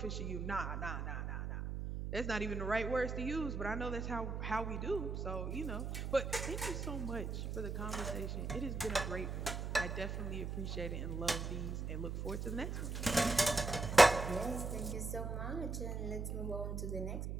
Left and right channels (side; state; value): right; noise; hum, 3 dB below the sound